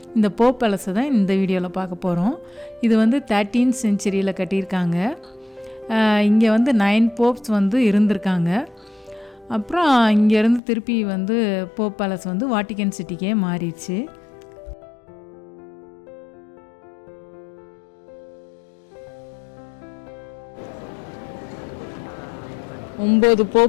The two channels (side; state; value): right; drops out; at 10.6 s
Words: இந்த போப் பேலஸை தான் இந்த வீடியோவில் பார்க்க போகிறோம். இது வந்து 13th செஞ்சுரியில் கட்டியிருக்காங்க. இங்கே வந்து 9 போப்ஸ் வந்து இருந்திருக்காங்க. அப்புறம் இங்கேருந்து திருப்பி வந்து போப் பேலஸ் வந்து வாட்டிக்கன் சிட்டிக்கே மாறிடுச்சு. ஒம்பது